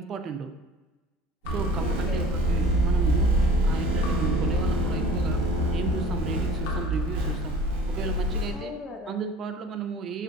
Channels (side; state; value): both; normal; correlation 0.45